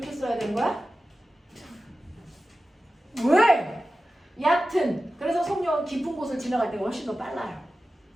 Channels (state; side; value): normal; both; correlation 0.94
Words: 써야 되는 거야? 왜? 얕은. 그래서 속력은 깊은 곳을 지나갈 때가 훨씬 더 빨라요.